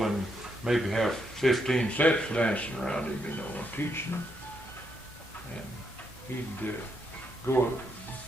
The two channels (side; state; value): both; normal; correlation 0.78